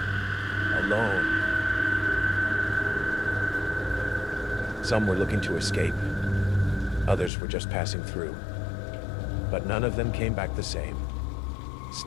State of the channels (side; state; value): right; drops out; at 7.3 s